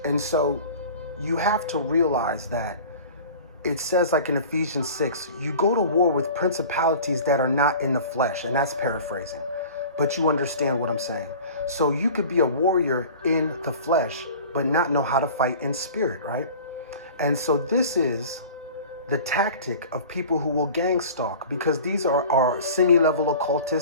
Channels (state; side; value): inverted; both; correlation -0.41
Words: so you have to realize that it says, like in Ephesians 6, you go to war with principalities that are not in the flesh, and that's paraphrasing, but you understand what I'm saying. So you could be a warrior in the flesh, but not know how to fight in spirit, right? And so this is the tactic of people who will gang stalk, because these are semi-level